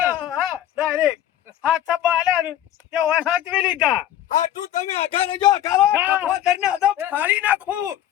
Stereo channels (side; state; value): right; quieter; 11.9 dB